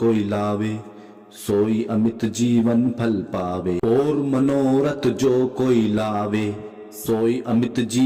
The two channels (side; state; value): both; identical; correlation 1.00